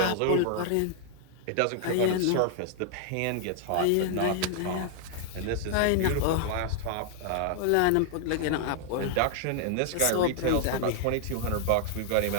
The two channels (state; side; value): different; both; correlation 0.00